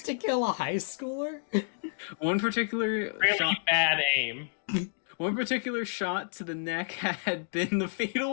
to kill a high schooler? One particular Really bad aim. One particular shot to the neck had been the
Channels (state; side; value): silent; right; 58 dB below the other